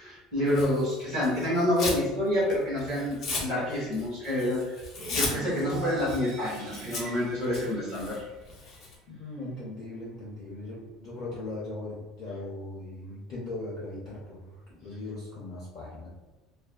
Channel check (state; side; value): normal; both; correlation 0.51